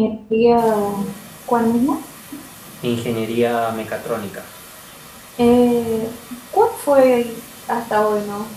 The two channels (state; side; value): identical; both; correlation 1.00